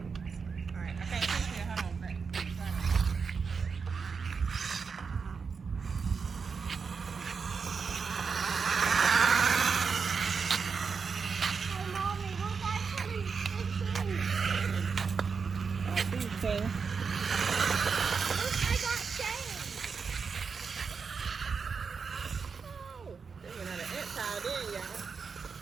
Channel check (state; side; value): quieter; left; 5.5 dB